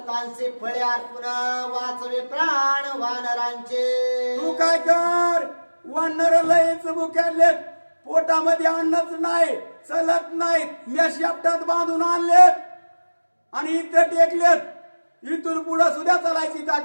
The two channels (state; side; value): inverted; both; correlation -1.00